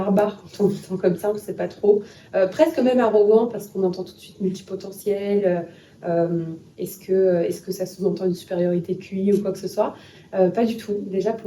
quand on l'entend comme ça, on ne sait pas trop. Presque même arrogant parce qu'on entend tout de suite multipotentiel. Est-ce que ça sous-entend une supériorité QI ou quoi que ce soit? Pas du tout. Déjà,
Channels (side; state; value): both; identical; correlation 1.00